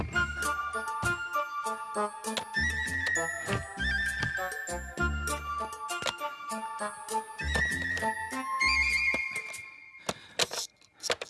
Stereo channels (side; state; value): both; identical; correlation 1.00